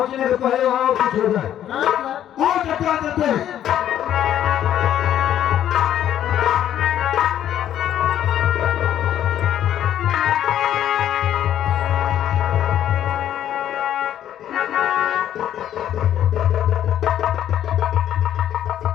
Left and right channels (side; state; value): right; quieter; 11.0 dB